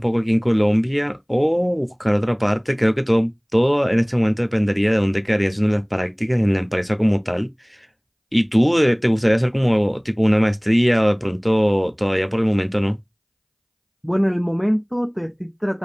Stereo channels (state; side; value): identical; both; correlation 1.00